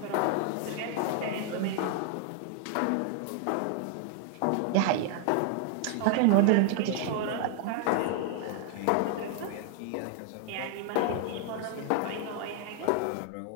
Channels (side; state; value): both; different; correlation 0.00